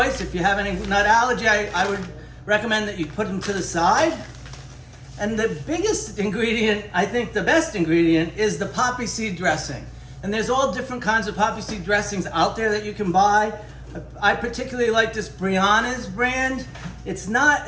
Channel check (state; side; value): identical; both; correlation 1.00